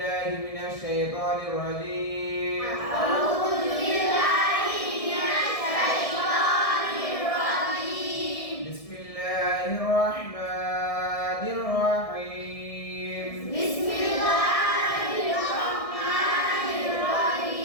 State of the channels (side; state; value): right; late; 1.6 ms